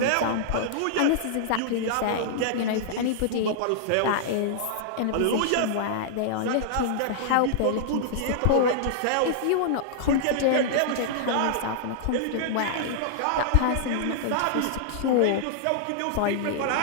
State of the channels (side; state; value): both; different; correlation -0.01